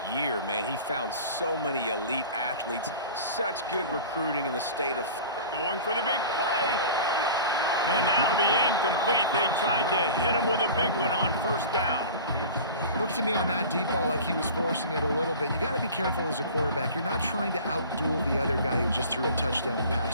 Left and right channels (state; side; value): inverted; both; correlation -0.39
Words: year, man. He found so many elite athletes, such good recruiting in the state of... Going for the big play. And that'll be incomplete. They tried to hit him with a big one on 1st down. Looked to me on that deep ball like he was forcing it a little bit. You got to be careful as a quarterback. You're not trying to outduel the other guy who just threw a touchdown